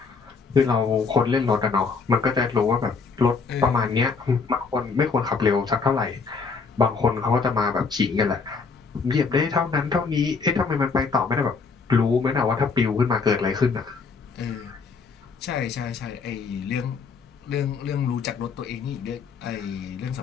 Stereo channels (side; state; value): right; quieter; 4.9 dB